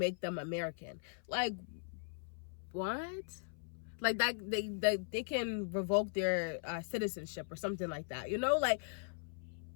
them American. Like, what? Like, that they can revoke their citizenship or something like that, you know? Like,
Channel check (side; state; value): right; silent; 52 dB below the other